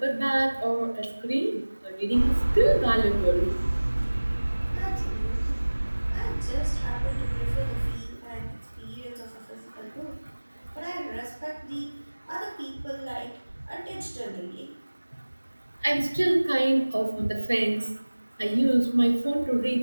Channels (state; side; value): inverted; both; correlation -1.00